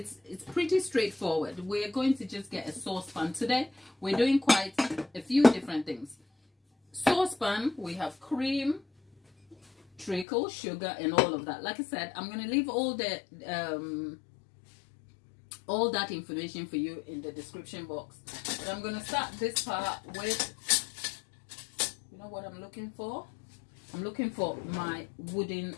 pretty straightforward. We're going to just get a saucepan today. We're doing quite a few different things. Saucepan, we have cream, treacle, sugar, and all of that. Like I said, I'm going to leave all that information for you in the description box. But I'm going to start this part with, you know what I'm looking for? I'm looking for my wooden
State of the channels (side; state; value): right; drops out; at 10.2 s